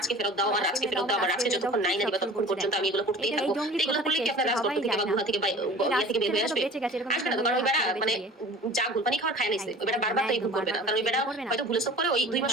ফেরত দাও, আমার রাজকে ফেরত দাও, আমার রাজকে যতক্ষণ নাই না দিবা ততক্ষণ পর্যন্ত আমি এগুলো করতেই থাকবো। এগুলো করলে কি আপনার রাজদত্ত থেকে বা গুহা থেকে বের হয়ে আসবে? আসবে না। কারণ ওই বেড়া মানে যা গুলপানি খাওয়ার খায় নাইছে, ওই বেড়া বারবার তো এই ভুল করবে না। কারণ ওই বেড়া হয়তো ভুলে সব করে ওই 2 মাস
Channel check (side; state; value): both; normal; correlation 0.42